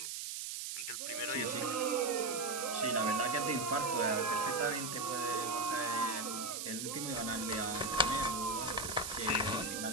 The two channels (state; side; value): noise; right; hiss, 4 dB below the sound